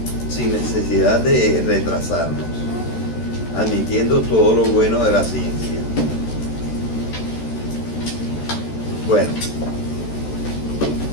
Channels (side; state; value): right; late; 13 ms